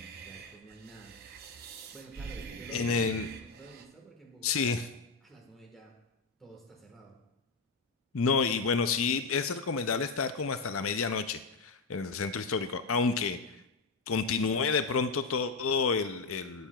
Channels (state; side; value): quieter; right; 4.4 dB